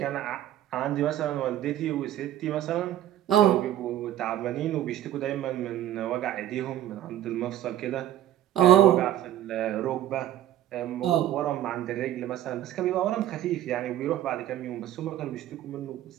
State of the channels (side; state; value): left; quieter; 12.3 dB